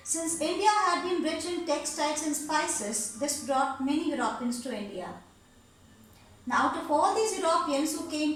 Since India had been rich in textiles and spices, this brought many Europeans to India. Now out of all these Europeans who came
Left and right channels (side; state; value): both; identical; correlation 1.00